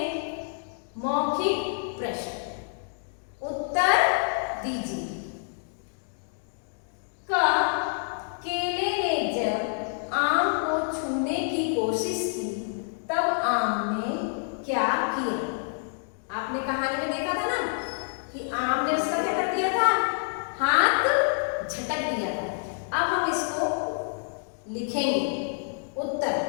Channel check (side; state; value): right; silent; digital silence